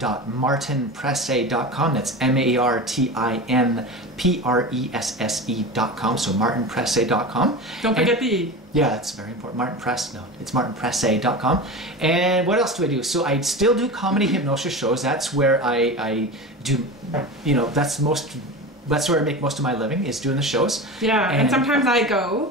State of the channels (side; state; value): both; normal; correlation 0.28